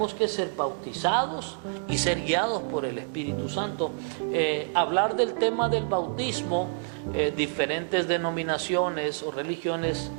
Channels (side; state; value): left; silent; digital silence